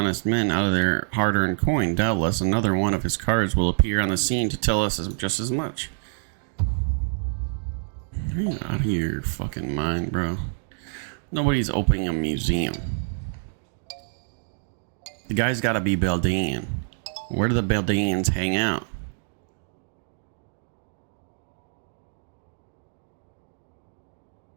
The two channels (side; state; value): left; silent; 61 dB below the other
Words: men out of their hard-earned coin. Doubtless another one of his cards will appear on the scene to tell us just as much. Are you out of your fucking mind, bro? Nobody's opening a museum. The guy's gotta be Beldian. Where do the Beldians hang out?